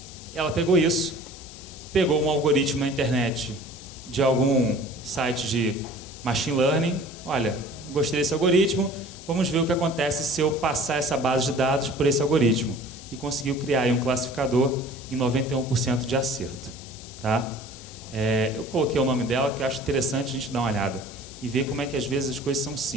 Ela pegou isso, pegou um algoritmo na internet de algum site de machine learning. Olha, gostei desse algoritmo, vamos ver o que acontece se eu passar essa base de dados por esse algoritmo. E conseguiu criar aí um classificador em 91% de acerto. Tá? Eu coloquei o nome dela, que eu acho interessante a gente dar uma olhada e ver como é que às vezes as coisas são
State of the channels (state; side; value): noise; left; hiss, 16 dB below the sound